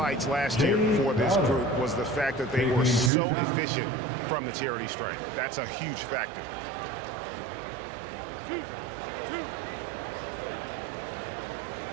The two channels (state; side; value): drops out; left; at 3.1 s